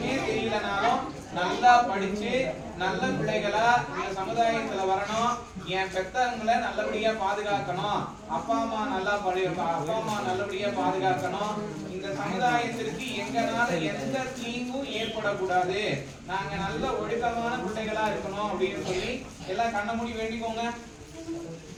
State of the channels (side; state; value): both; identical; correlation 1.00